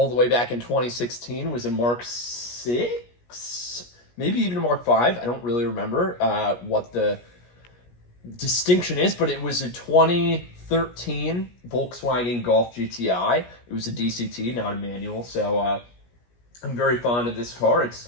the way back in 2016 was a Mark 6, maybe even a Mark 5. I don't really remember what the distinction is, but it was a 2013 Volkswagen Golf GTI. It was a DCT, not a manual, so I'm very fond of this car.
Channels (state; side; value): late; right; 17 ms